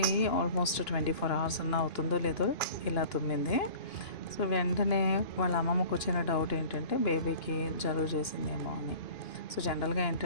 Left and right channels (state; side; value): late; right; 2.9 ms